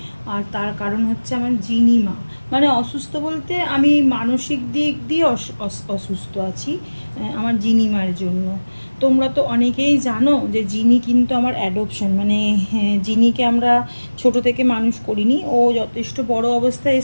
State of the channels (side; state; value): both; inverted; correlation -1.00